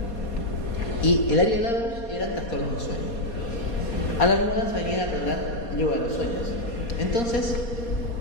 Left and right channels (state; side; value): late; right; 4.2 ms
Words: Y el área de LaBerge eran trastornos de sueño. Adam Wallace venía a aprender yoga de los sueños. Entonces,